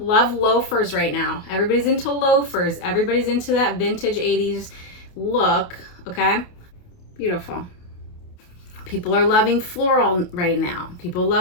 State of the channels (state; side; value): late; right; 28 ms